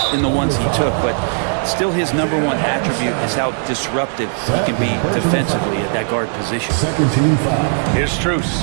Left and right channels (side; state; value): left; silent; digital silence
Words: in the ones he took, but still his number 1 attribute is how disruptive he can be defensively at that guard position. Here's Strus.